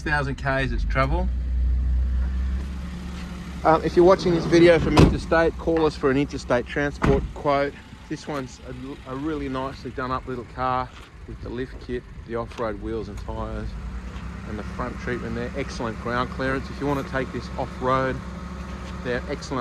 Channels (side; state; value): both; identical; correlation 1.00